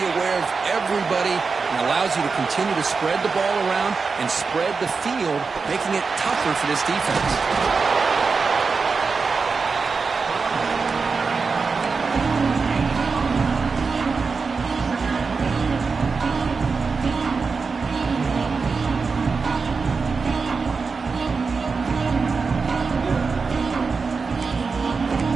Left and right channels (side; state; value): left; quieter; 4.8 dB